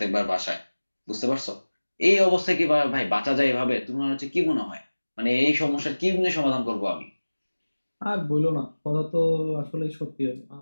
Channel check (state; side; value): inverted; both; correlation -1.00